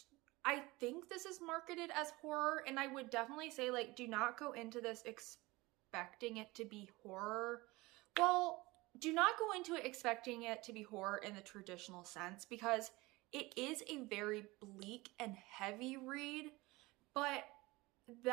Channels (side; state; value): left; quieter; 21.7 dB